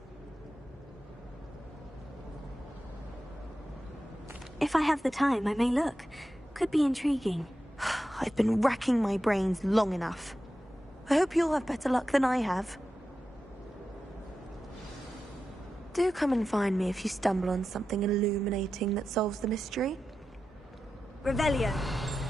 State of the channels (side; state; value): both; normal; correlation 0.91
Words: If I have the time, I may look. Could be intriguing. I've been racking my brains long enough. I hope you'll have better luck than I have. Do come and find me if you stumble on something illuminating that solves the mystery. Revelio.